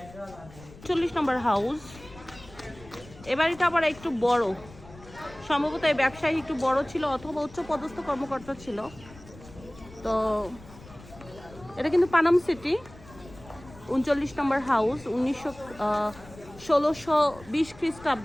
40 নম্বর হাউস। এ বাড়িটা আবার একটু বড়, সম্ভবত এই ব্যবসায়ী একটু বড় ছিল অথবা উচ্চ পদস্থ কর্মকর্তা ছিল। তো এটা কিন্তু পানাম সিটি। 39 নম্বর হাউস। 1620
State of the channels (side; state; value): left; noise; rumble, 20 dB below the sound